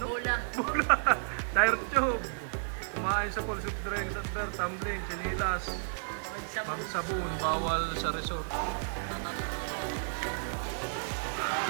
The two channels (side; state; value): left; silent; 56 dB below the other